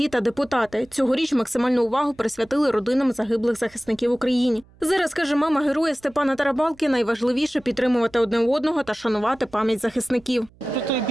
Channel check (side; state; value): right; noise; hum, 28 dB below the sound